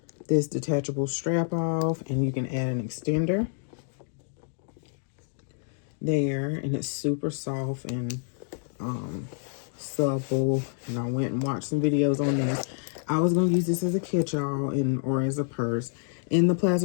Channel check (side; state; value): right; silent; digital silence